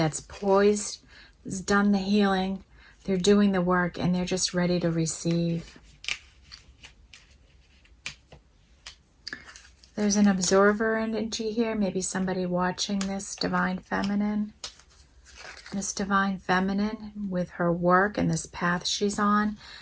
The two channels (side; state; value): both; identical; correlation 1.00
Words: poised, has done the healing, they're doing the work, and they're just ready to receive. There's an observer energy here, maybe somebody watching this divine feminine. This divine feminine, with her work and this path she's on,